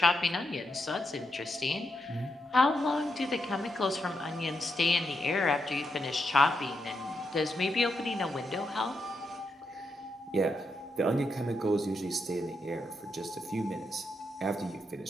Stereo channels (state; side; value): normal; both; correlation 0.83